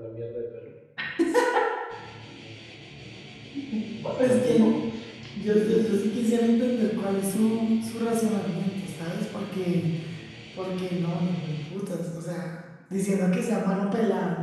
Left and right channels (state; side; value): identical; both; correlation 1.00